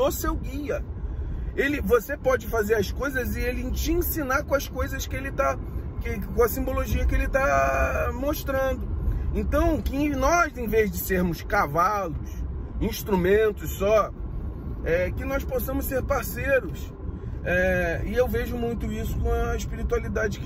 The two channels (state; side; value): identical; both; correlation 1.00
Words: seu guia. Você pode fazer as coisas e ele te ensinar com as coisas que ele tá, com a simbologia que ele está mostrando. Então, que nós, em vez de sermos cavalos, instrumentos só, que nós possamos ser parceiros. E eu vejo muito isso com a espiritualidade